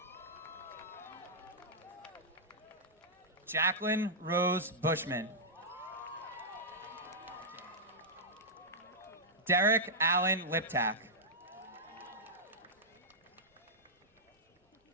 Jacqueline Rose Bushman. Derek Allen Liptak.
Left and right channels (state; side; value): normal; both; correlation -0.09